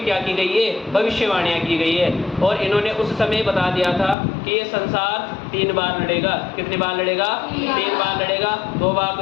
क्या की गई है? भविष्यवाणियां की गई है। और इन्होंने उस समय बता दिया था कि ये संसार 3 बार लड़ेगा। कितनी बार लड़ेगा? 3 बार लड़ेगा। 2 बार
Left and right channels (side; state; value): right; drops out; at 4.2 s